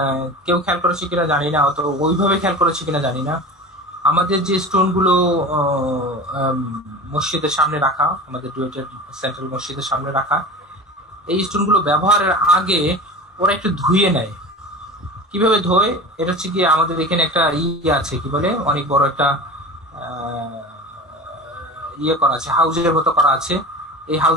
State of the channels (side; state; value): both; normal; correlation 0.34